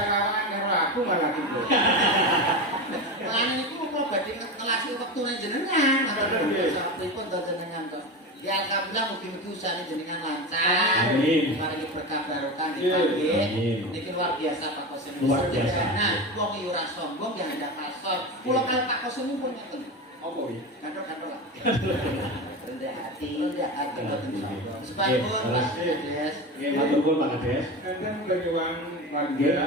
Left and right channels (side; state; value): both; normal; correlation 0.23